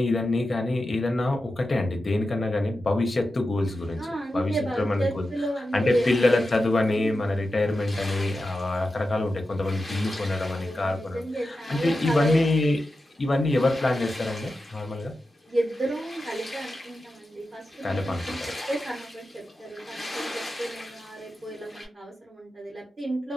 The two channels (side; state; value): both; normal; correlation 0.91